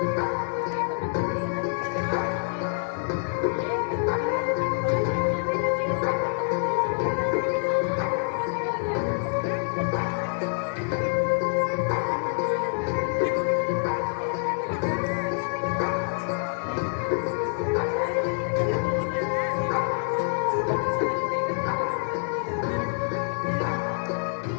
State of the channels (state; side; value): silent; right; 61 dB below the other